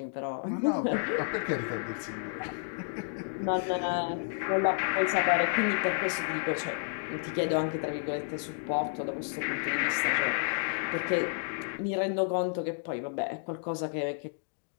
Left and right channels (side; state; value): right; silent; digital silence